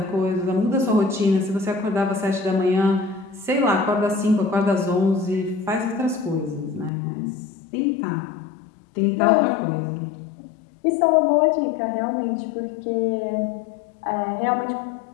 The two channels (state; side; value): drops out; right; at 6.9 s